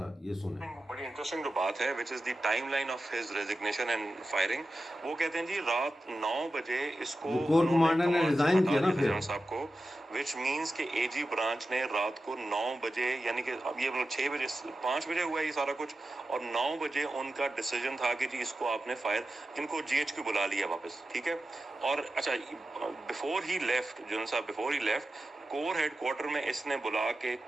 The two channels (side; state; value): both; normal; correlation 0.92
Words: یہ سنیں. بڑی انٹرسٹنگ جو بات ہے which is the time line of his resignation and firing. وہ کہتے ہیں جی رات 9 بجے اس کو جو کور انہوں نے کمانڈر نے کمانڈ سے ریزائن ہٹا کیا نا دیا تھا پھر, جنرل صاحب کو, وچ مینس کہ اے جی برانچ نے رات کو 9 بجے, یعنی کہ اب یہ 6 بجے 5 بجے ہوا ہے یہ سارا کچھ, اور 9 بجے ان کا ڈیسیجن تھا کہ جی اس کو آپ نے فائر, ان کو جی ایچ کیو بلا لیا واپس, ٹھیک ہے. اور اچھا بفور ہی لیفٹ, جنرل صاحب before he left, corps headquarter میں اس نے بلا کے